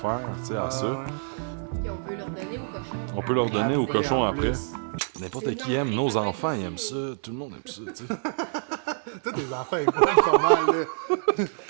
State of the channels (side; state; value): left; silent; 60 dB below the other